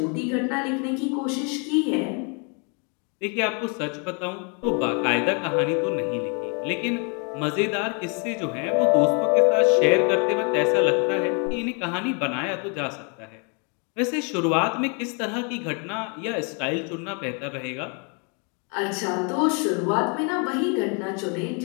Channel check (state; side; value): quieter; right; 36.0 dB